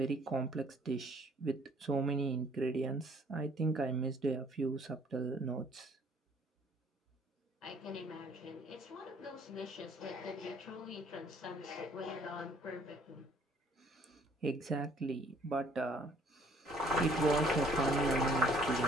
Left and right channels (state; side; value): normal; both; correlation 0.59